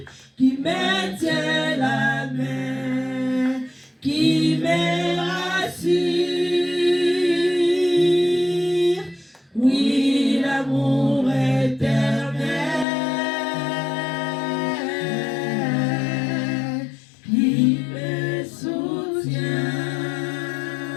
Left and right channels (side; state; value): right; drops out; at 12.9 s